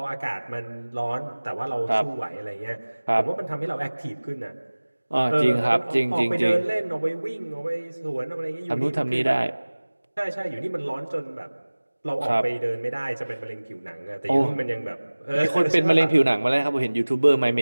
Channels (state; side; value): inverted; both; correlation -1.00